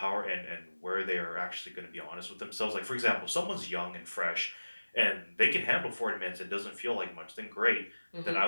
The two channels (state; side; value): inverted; both; correlation -1.00